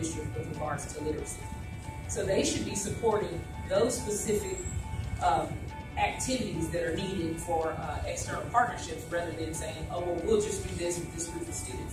with regards to literacy. So they should be supporting those specific activities that are needed for external partnerships rather than saying, oh, well, we'll just do this with this group of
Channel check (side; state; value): both; identical; correlation 1.00